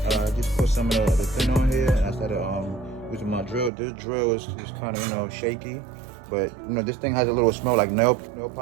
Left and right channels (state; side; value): drops out; left; at 3.7 s